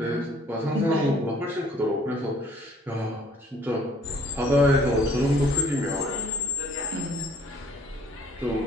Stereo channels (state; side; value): normal; both; correlation 0.59